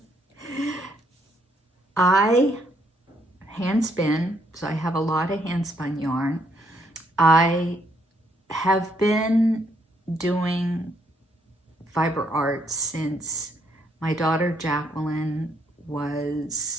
I hand spin, so I have a lot of hand spun yarn. I have been doing fiber arts since my daughter Jacqueline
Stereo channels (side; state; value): both; normal; correlation 0.72